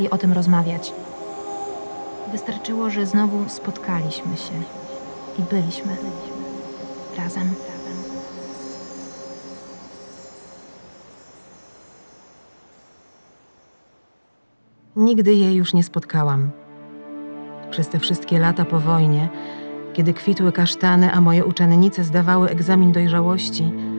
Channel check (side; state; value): both; inverted; correlation -1.00